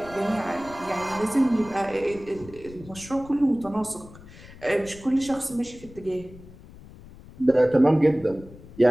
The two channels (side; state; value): left; noise; rumble, 19 dB below the sound